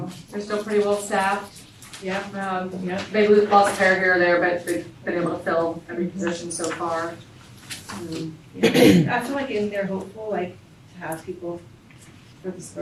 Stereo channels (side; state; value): both; identical; correlation 1.00